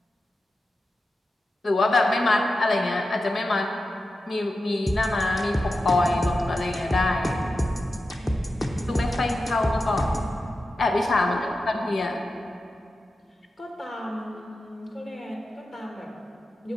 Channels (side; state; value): both; normal; correlation 0.92